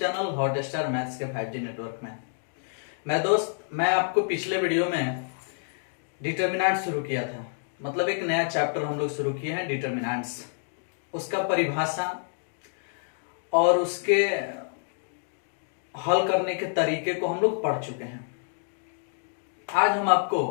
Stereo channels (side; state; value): right; silent; digital silence